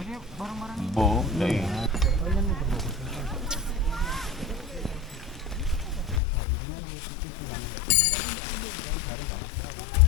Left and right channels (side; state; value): right; drops out; at 6.2 s